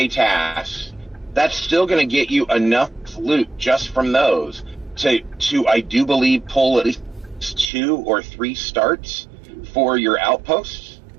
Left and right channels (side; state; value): left; drops out; at 7.7 s